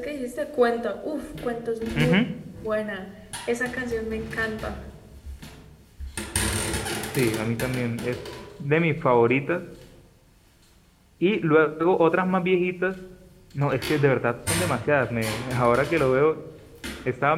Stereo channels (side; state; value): both; identical; correlation 1.00